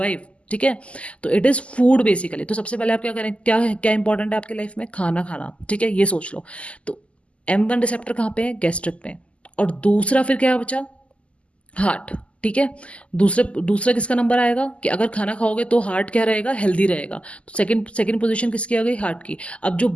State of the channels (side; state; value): right; late; 0.058 ms